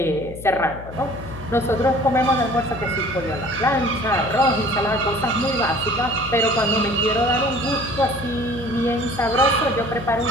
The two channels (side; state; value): left; noise; hum, 14 dB below the sound